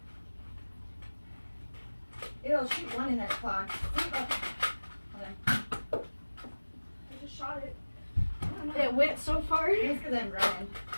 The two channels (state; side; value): inverted; both; correlation -1.00